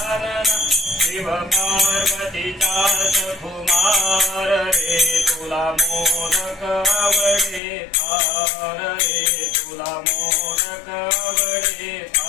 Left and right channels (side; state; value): right; drops out; at 7.6 s